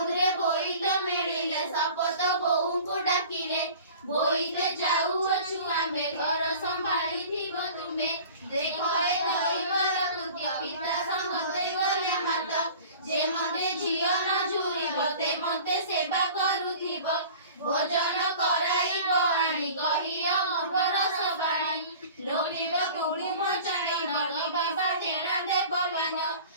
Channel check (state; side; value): inverted; both; correlation -0.43